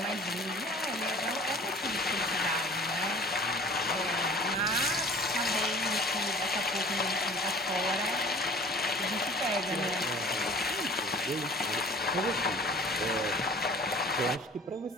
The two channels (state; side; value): normal; both; correlation 0.46